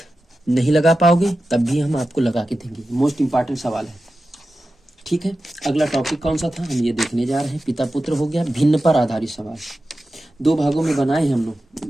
नहीं लगा पाओगे तब भी हम आपको लगा के देंगे। मोस्ट इंपॉर्टेंट सवाल है। ठीक है, अगला टॉपिक कौन सा था हम ये देखने जा रहे हैं। पिता पुत्र हो गया, भिन्न पर आधारित सवाल। 2 भागों में बनाए हम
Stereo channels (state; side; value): normal; both; correlation 0.93